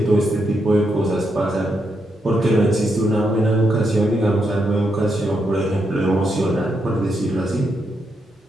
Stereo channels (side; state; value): both; normal; correlation 0.81